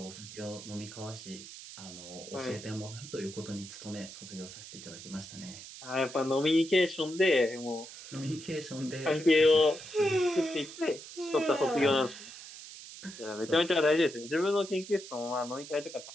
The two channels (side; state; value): right; noise; hiss, 14 dB below the sound